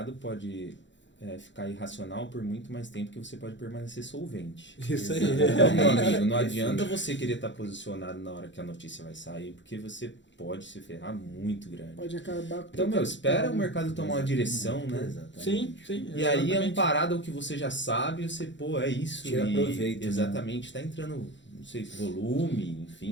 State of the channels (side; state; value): right; late; 0.54 ms